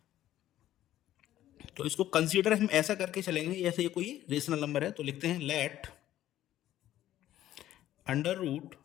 तो इसको कंसीडर हम ऐसा करके चलेंगे जैसे ये कोई रेशनल नंबर है। तो लिखते हैं let under root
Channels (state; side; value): quieter; right; 13.1 dB